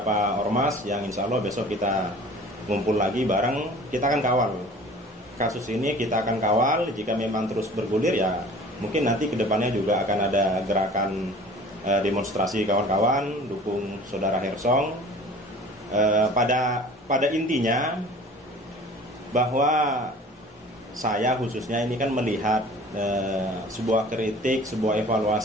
ormas yang insya Allah besok kita ngumpul lagi bareng, kita akan kawal kasus ini, kita akan kawal. Jika memang terus bergulir ya mungkin nanti kedepannya juga akan ada gerakan demonstrasi kawan-kawan dukung saudara Hersong. Pada intinya bahwa saya khususnya ini kan melihat sebuah kritik, sebuah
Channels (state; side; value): normal; both; correlation 0.45